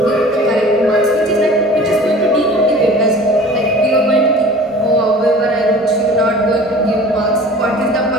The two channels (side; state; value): both; normal; correlation 0.43